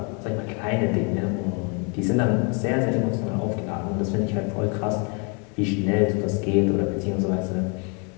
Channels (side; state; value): right; quieter; 34.8 dB